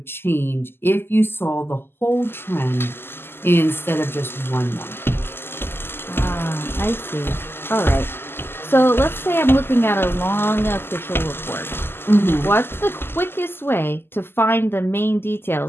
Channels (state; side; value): late; right; 0.11 ms